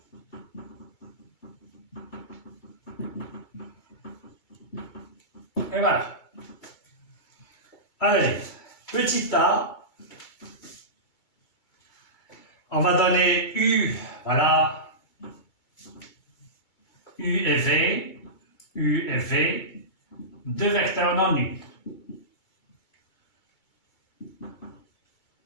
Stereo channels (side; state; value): right; late; 2.3 ms